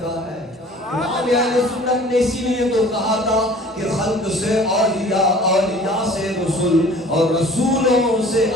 کا ہے امام اہل سنت نے اسی لیے تو کہا تھا کہ خلق سے اولیاء اولیاء سے رسول اور رسولوں سے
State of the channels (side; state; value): both; normal; correlation 0.47